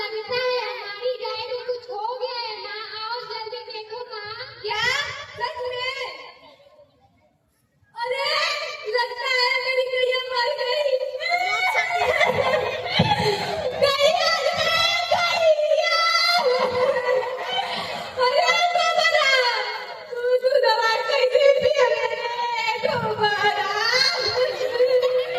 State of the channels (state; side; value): identical; both; correlation 1.00